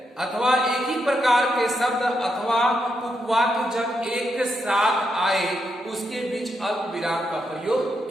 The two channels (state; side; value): normal; both; correlation 0.82